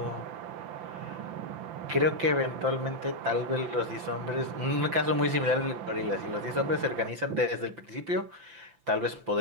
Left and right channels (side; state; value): left; late; 5.9 ms